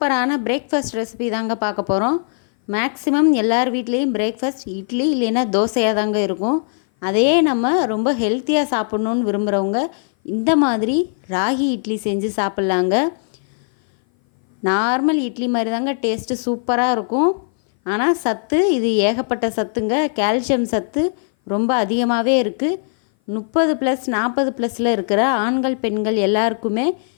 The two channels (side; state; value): right; silent; 58 dB below the other